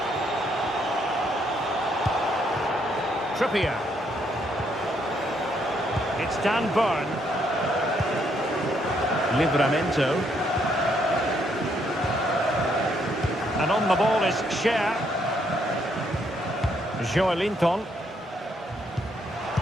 Trippier. It's Dan Burn. Livramento. And on the ball is Cher. Joelinton.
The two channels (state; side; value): normal; both; correlation 0.72